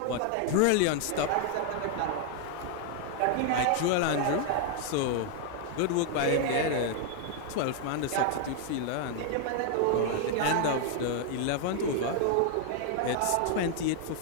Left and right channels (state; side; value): different; both; correlation 0.00